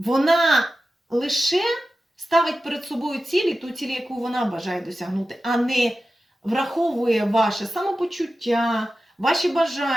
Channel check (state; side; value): normal; both; correlation 0.93